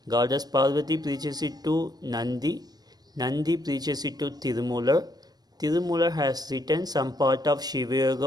Goddess Parvati preaches it to Nandi. Nandi preaches it to Tirumular. Tirumular has written some part of Shiva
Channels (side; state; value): left; late; 0.19 ms